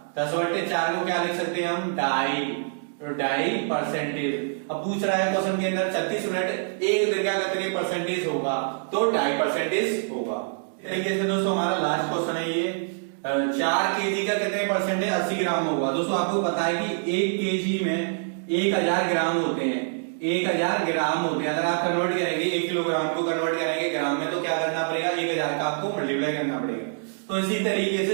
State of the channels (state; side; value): silent; left; digital silence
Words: 10/4 को क्या लिख सकते हैं हम, 2.5। तो 2.5 परसेंटेज। अब पूछ रहा है क्वेश्चन के अंदर 36 मिनट एक दिन का कितनी परसेंटेज होगा, तो 2.5 परसेंटेज होगा। तरीके से दोस्तों हमारा लास्ट क्वेश्चन है ये 4 केजी का कितने परसेंट है, 80 ग्राम होगा। दोस्तों आपको पता है कि 1 केजी में 1000 ग्राम होते हैं। 1000 ग्राम होते हैं। अगर आप कन्वर्ट करेंगे 1 किलोग्राम को कन्वर्ट करेंगे ग्राम में तो क्या करना पड़ेगा, 1000 का आपको मल्टीप्लाई करना पड़ेगा। तो इसी तरीके